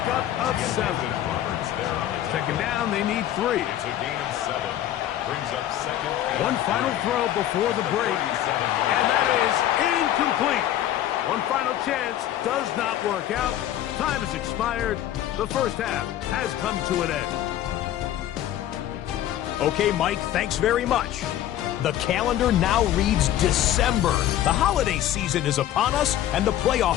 of 7. Second down, they need 3. It's a gain of 7. Brings up second. One final throw before the break. And that is incomplete. One final chance does not work out. Time has expired. The first half has come to an end. Okay, Mike, thanks very much. The calendar now reads December. The holiday season is upon us, and the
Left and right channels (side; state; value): right; quieter; 12.3 dB